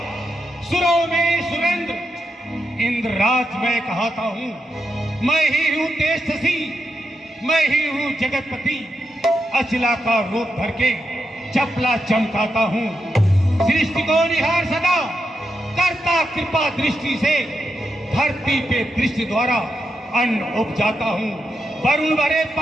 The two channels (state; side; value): normal; both; correlation 0.85